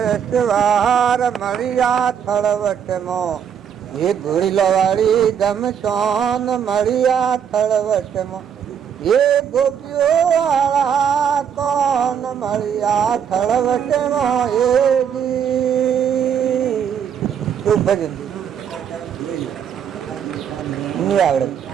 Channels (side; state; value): left; quieter; 8.2 dB